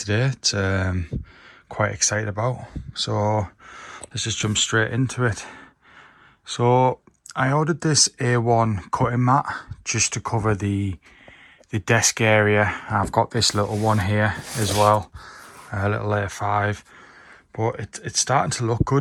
It's quite excited about. So let's just jump straight into it. So I ordered this A1 cutting mat just to cover the desk area. I've got this little one here as well, a little A5, but it's starting to look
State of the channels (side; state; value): both; identical; correlation 1.00